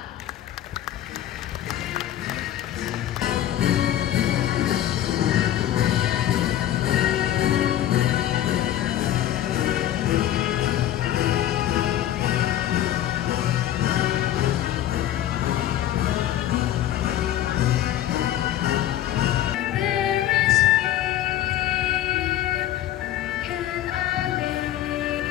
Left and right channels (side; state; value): right; quieter; 12.4 dB